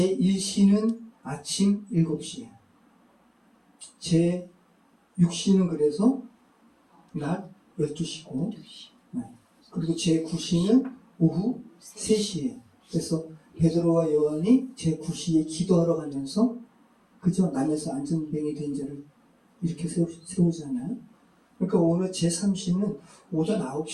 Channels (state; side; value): identical; both; correlation 1.00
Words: 아침 7시예요. 제6시는 그래서 낮 12시고, 네. 그리고 제9시는 오후 3시예요. 그래서 베드로와 요한이 제9시에 기도하러 가면서, 그죠? 남에서 안전뱅이 된 자를 이렇게 세우잖아요. 그러니까 오늘 제3시는 오전